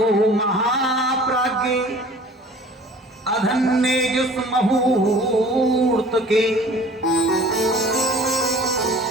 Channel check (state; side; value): normal; both; correlation 0.47